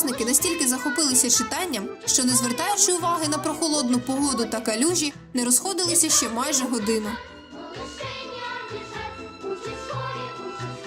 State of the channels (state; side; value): identical; both; correlation 1.00